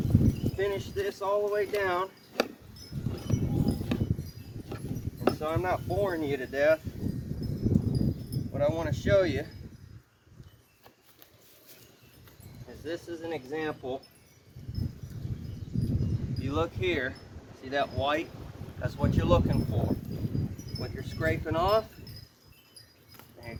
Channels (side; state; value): both; identical; correlation 1.00